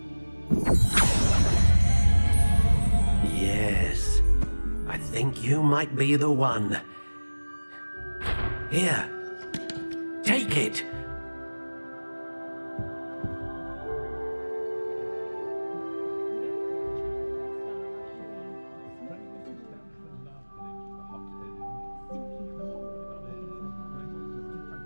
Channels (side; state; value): both; inverted; correlation -1.00